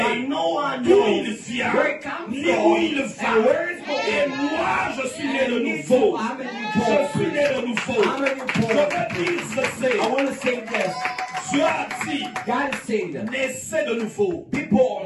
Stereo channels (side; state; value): both; identical; correlation 1.00